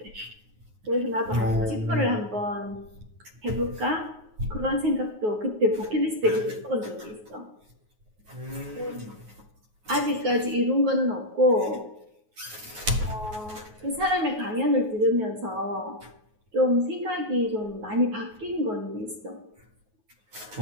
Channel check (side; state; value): left; late; 9.4 ms